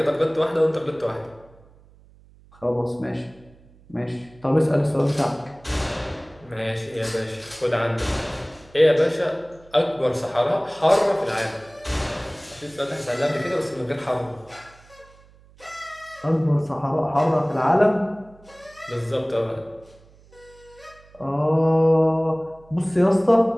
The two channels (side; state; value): right; noise; hum, 26 dB below the sound